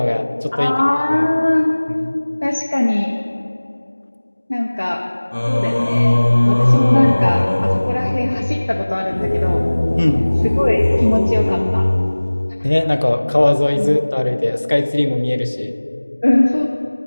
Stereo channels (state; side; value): inverted; both; correlation -1.00